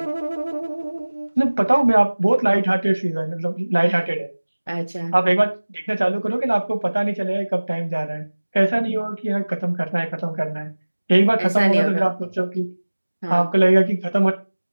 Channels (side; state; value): both; inverted; correlation -1.00